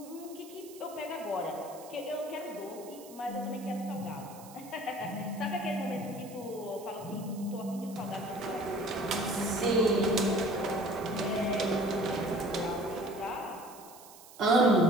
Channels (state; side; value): noise; right; hiss, 19 dB below the sound